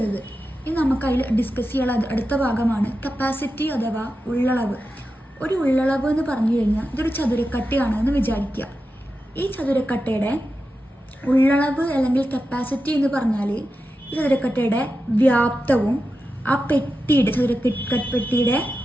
ഇനി നമുക്ക് അതിൽ ഡിസ്കസ് ചെയ്യാനുള്ള അടുത്ത ഭാഗമാണ് കപ്പാസിറ്റി അഥവാ ഉള്ളളവ്. ഒരു ഉള്ളളവ് എന്ന് പറഞ്ഞു കഴിഞ്ഞാൽ ഇതൊരു ചതുരക്കട്ടയാണ് എന്ന് വിചാരിക്കുക. ഈ ചതുരക്കട്ടയുടെ ഉള്ളളവ് അല്ലെങ്കിൽ കപ്പാസിറ്റി എന്ന് പറഞ്ഞാൽ ഈ ചതുരക്കട്ടയുടെ വ്യാപ്തവും ആ ചതുരപ്പെട്ടിയുടെ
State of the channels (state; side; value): normal; both; correlation 0.91